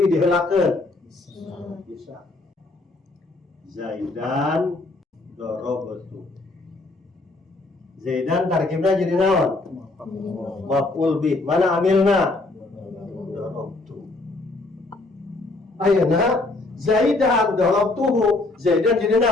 bih diheulakeun? Bisa. Zaidan darabtu. Zaidan tarkibna jadi naon? Maf'ul bih. Mana amilna? Darabtu. Ayeuna zaidan darabtuhu. Zaidan jadi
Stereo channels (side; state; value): right; quieter; 3.1 dB